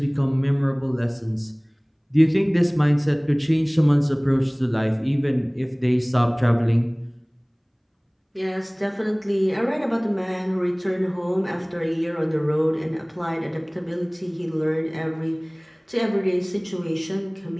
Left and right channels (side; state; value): both; identical; correlation 1.00